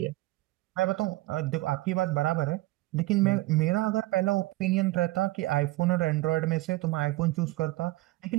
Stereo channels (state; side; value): quieter; left; 18.8 dB